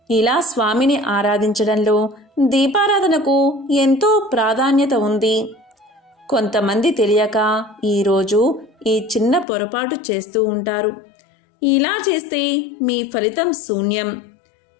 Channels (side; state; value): right; drops out; at 9.5 s